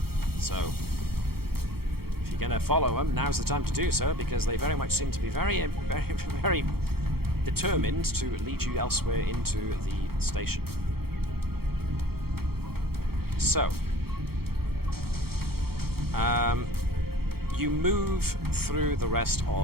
So, if you're going to follow them, now's the time to do so, because they very much seem to be very, very, very determined to lead you elsewhere into the station. So, you move through the rest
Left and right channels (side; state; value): left; late; 0.95 ms